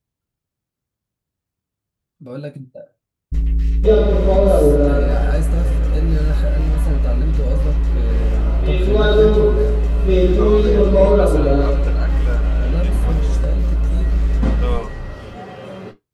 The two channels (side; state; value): both; identical; correlation 1.00